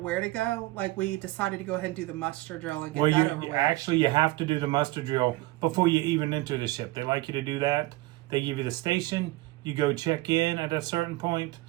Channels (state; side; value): quieter; left; 19.5 dB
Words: to go. Like, we decided to go ahead and do the muster drill and get that over with. Actually, you have to do the muster drill before you even enter the ship. They like you to do that. They give you the station. You go check in at a certain point,